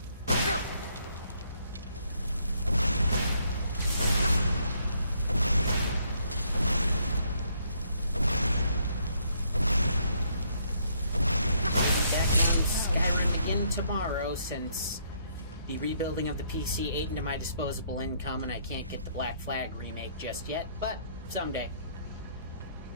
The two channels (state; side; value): inverted; both; correlation -0.70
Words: Back on Skyrim again tomorrow, since the rebuilding of the PC ate into my disposable income and I can't get the Black Flag remake just yet, but someday.